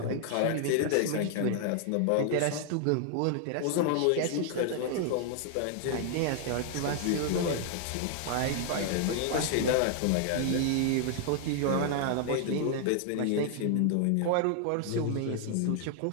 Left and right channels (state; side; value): different; both; correlation 0.00